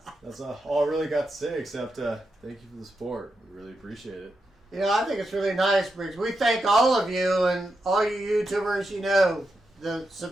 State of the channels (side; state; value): both; normal; correlation 0.86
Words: that's all I really got to say, except thank you for the support. We really appreciate it. You know, I think it's really nice, Briggs. We thank all of you and all you YouTubers. You know, the